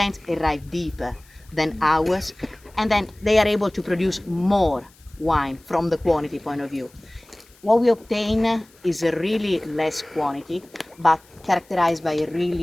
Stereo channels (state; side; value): noise; left; hiss, 29 dB below the sound